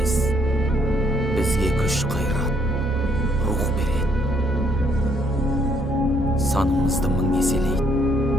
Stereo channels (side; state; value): both; normal; correlation 0.69